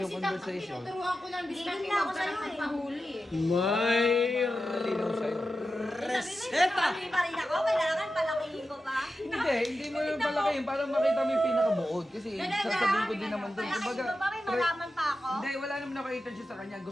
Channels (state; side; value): normal; both; correlation 0.91